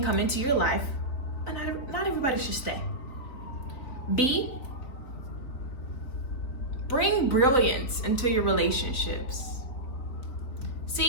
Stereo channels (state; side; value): late; right; 3.9 ms